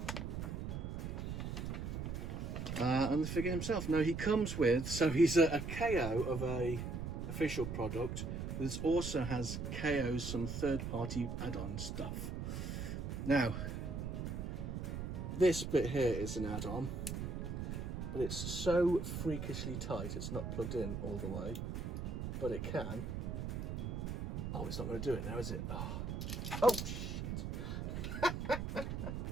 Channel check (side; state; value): right; noise; rumble, 4 dB below the sound